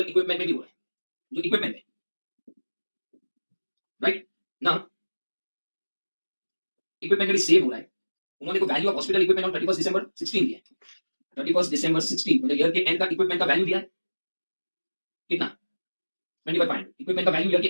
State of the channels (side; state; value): both; inverted; correlation -1.00